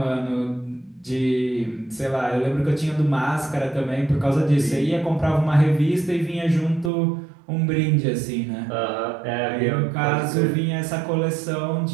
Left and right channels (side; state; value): left; drops out; at 6.9 s